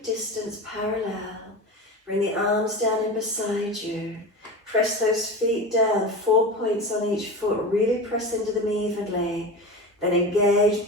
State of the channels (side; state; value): both; normal; correlation 0.27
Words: distance parallel. Bring the arms down in beside you. Press those feet down, 4 points on each foot. Really press into them evenly. Then engage,